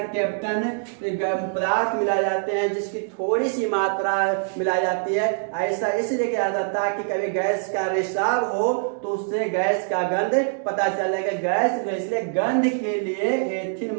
पदार्थ मिलाए जाते हैं, जिसकी थोड़ी सी मात्रा मिलाई जाती है। ऐसा इसलिए किया जाता है कि कभी गैस का रिसाव हो तो उससे गैस का गंध पता चलेगा। गैस इसलिए गंध के लिए एथिल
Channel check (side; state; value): left; silent; digital silence